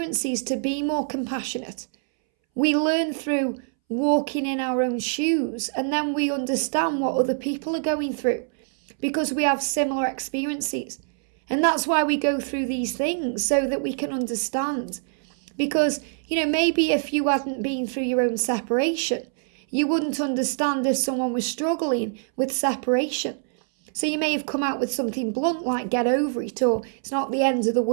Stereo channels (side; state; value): left; silent; 62 dB below the other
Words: to be more compassionate. We learn through walking in our own shoes, and then we understand what other people are going through because we have similar experiences. And that's why we go through these things, so that we can understand. Because, maybe if you hadn't been through your own separation, you wouldn't understand if someone was struggling with separation. So you may have come out with something blunt like get over it, or it's not the end of the